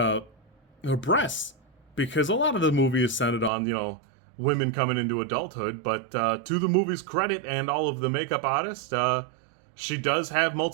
her breasts, because a lot of the movie is centered on, women coming into adulthood. But to the movie's credit and all of the makeup artists, she does have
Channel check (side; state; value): left; drops out; at 3.5 s